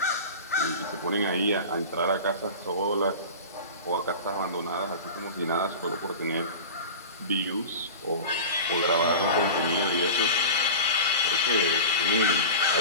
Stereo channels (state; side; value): inverted; both; correlation -0.32